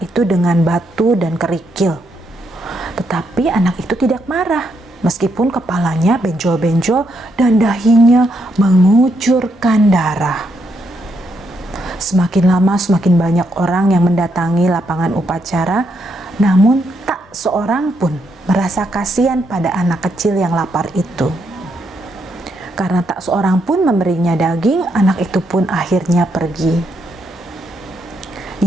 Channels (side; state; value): both; normal; correlation 0.78